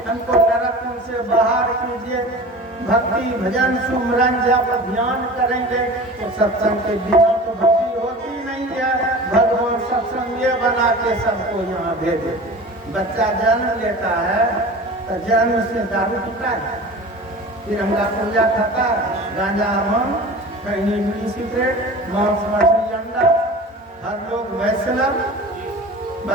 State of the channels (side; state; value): both; normal; correlation 0.37